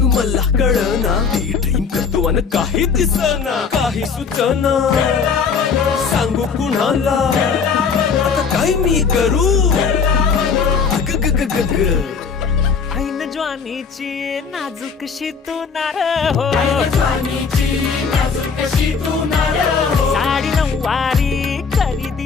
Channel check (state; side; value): quieter; right; 5.7 dB